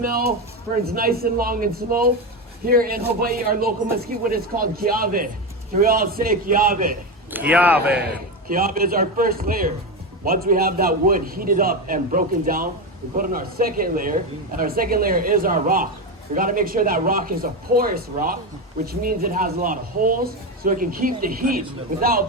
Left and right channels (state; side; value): normal; both; correlation 0.15